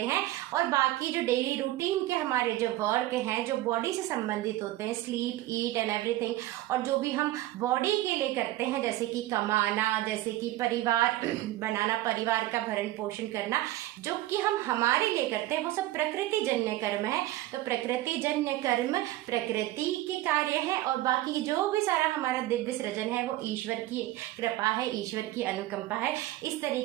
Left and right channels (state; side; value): quieter; left; 16.1 dB